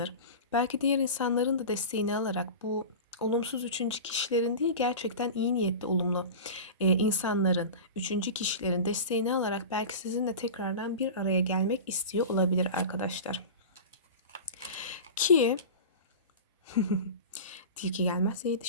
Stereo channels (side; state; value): both; inverted; correlation -0.30